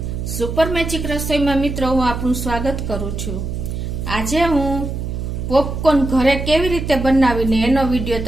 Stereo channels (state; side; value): noise; right; hum, 5 dB below the sound